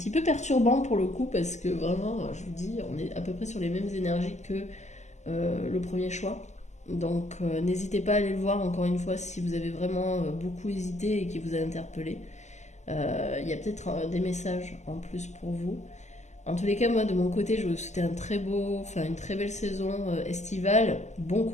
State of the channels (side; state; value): right; late; 0.33 ms